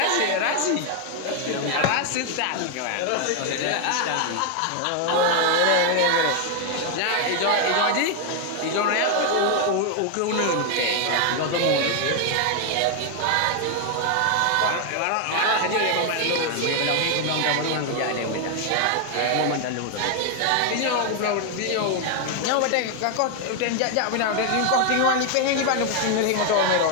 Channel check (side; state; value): both; different; correlation 0.01